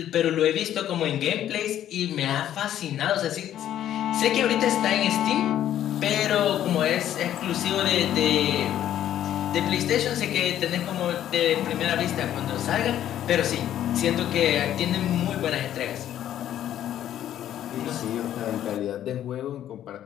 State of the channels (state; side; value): quieter; right; 11.4 dB